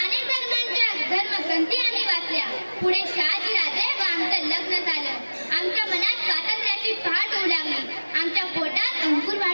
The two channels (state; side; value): inverted; both; correlation -1.00